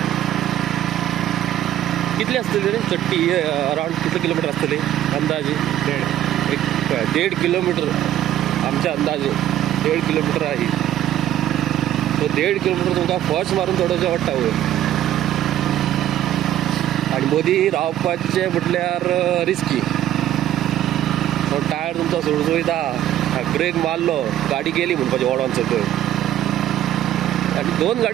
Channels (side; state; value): left; quieter; 12.4 dB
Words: कितली आसतली रे चडटी? अरावंड कितले किलोमिटर आसतली अंदाजे? 1.5 किलोमिटर आमच्या अंदाजे 1.5 किलोमिटर आहे. तो 1.5 किलोमिटर तुमकां फस्ट मारून चडोवचें पडटा वयर. आनी मदीं रावपाचें म्हटल्यार रिस्की. तो टायर तुमचो सुळसुळीता. ब्रेक मारलो गाडी गेली म्हणपाचें ओडोन सकयल. आनी 2